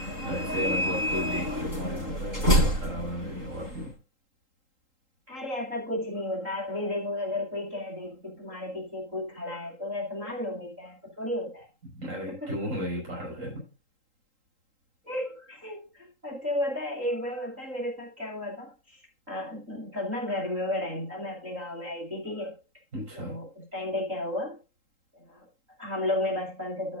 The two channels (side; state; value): left; late; 3.8 ms